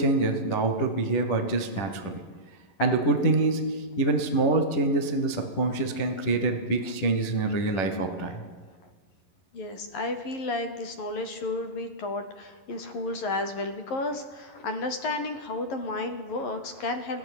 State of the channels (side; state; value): right; late; 11 ms